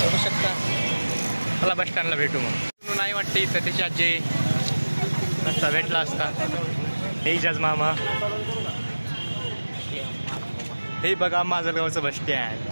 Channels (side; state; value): both; inverted; correlation -1.00